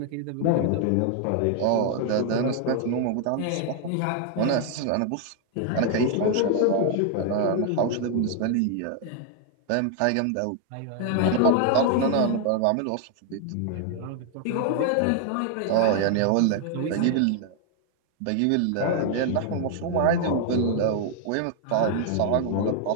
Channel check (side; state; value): both; different; correlation 0.00